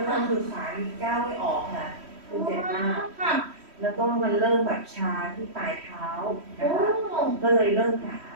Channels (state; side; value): late; left; 3.1 ms